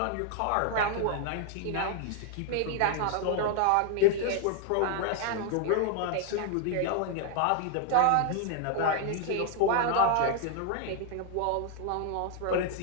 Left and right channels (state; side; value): different; both; correlation 0.00